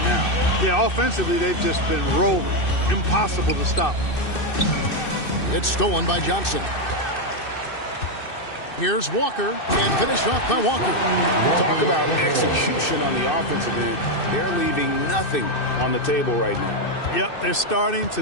now. Yeah, offensively, they've just been rolling. Impossible to stop. It's stolen by Johnson. Here's Walker, and finished off by Walker. Talk about execution on the offensive end. They're leaving nothing on the table right now. Yep, they're starting to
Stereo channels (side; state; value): right; late; 2.6 ms